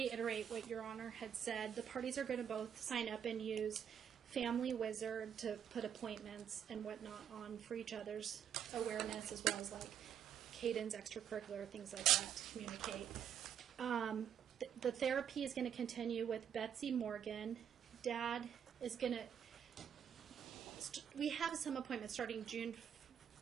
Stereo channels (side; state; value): left; quieter; 8.6 dB